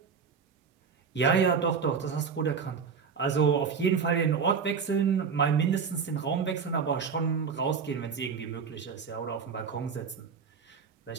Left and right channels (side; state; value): left; quieter; 6.0 dB